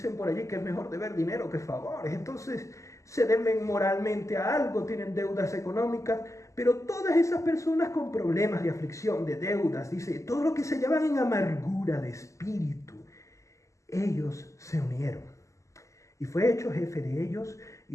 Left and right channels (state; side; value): late; right; 0.15 ms